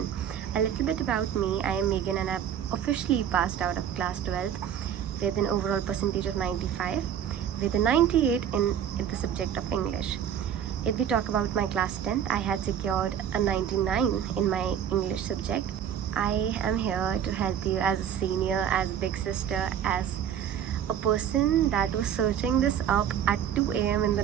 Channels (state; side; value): quieter; left; 9.1 dB